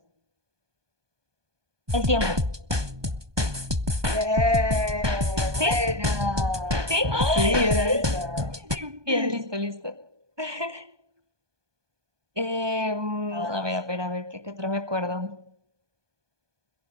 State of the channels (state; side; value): late; left; 1.2 ms